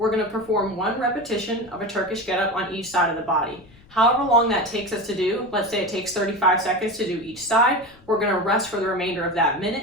going to perform one repetition of a Turkish getup on each side of the body. However long that takes us to do, let's say it takes 35 seconds to do each side, we're going to rest for the remainder of that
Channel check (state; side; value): noise; left; rumble, 27 dB below the sound